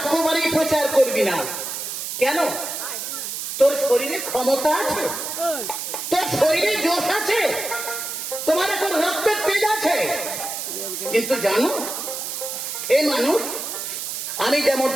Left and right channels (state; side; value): noise; right; hiss, 5 dB below the sound